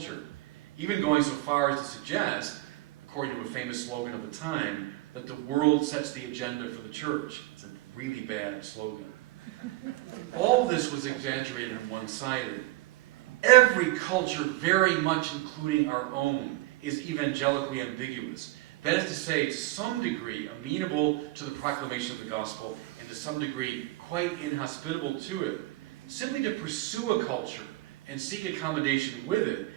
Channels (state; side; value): quieter; left; 18.9 dB